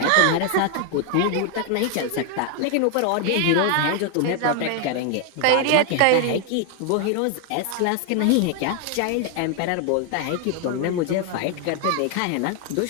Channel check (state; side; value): different; both; correlation 0.00